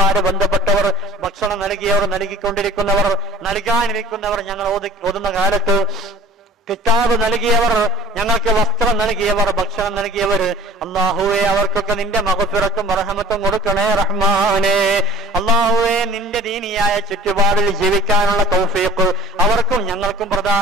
ബന്ധപ്പെട്ടവർ, ഭക്ഷണം നൽകിയവർ, നൽകിക്കൊണ്ടിരിക്കുന്നവർ, നൽകാനിരിക്കുന്നവർ, ഞങ്ങൾ ഓതുന്ന കാലത്ത് കിതാബ് നൽകിയവർ, ഞങ്ങൾക്ക് വസ്ത്രം നൽകിയവർ, ഭക്ഷണം നൽകിയവർ, അല്ലാഹുവേ, അവർക്കൊക്കെ നിന്റെ മഗ്ഫിറത്തും റഹ്മത്തും കൊടുക്കണേ റഹ്മാനേ. അല്ലാഹുവേ, നിന്റെ ദീനിയായ ചുറ്റുപാടിൽ ജീവിക്കാനുള്ള തൗഫീഖ് അവർക്കും ഞങ്ങൾക്കും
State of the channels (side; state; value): both; normal; correlation 0.45